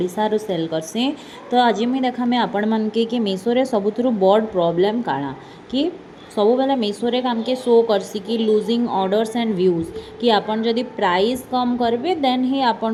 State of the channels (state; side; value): identical; both; correlation 1.00